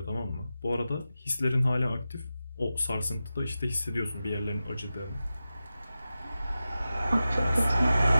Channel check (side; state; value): both; inverted; correlation -0.93